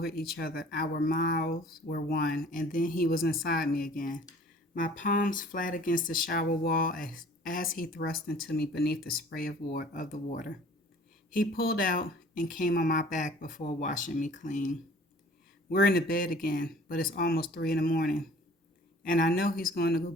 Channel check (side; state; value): both; normal; correlation 0.50